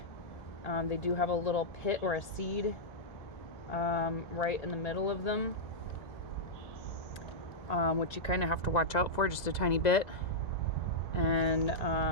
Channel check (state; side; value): late; right; 2.0 ms